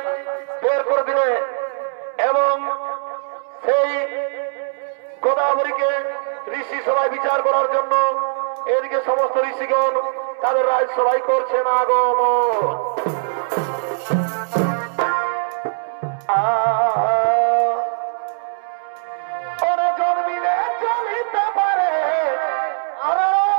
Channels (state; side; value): silent; left; 64 dB below the other